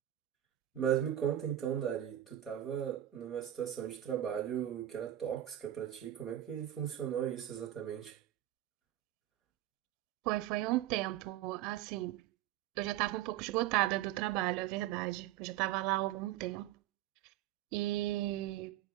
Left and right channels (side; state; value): left; quieter; 12.8 dB